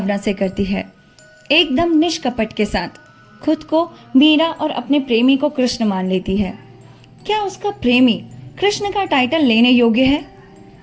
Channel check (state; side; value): identical; both; correlation 1.00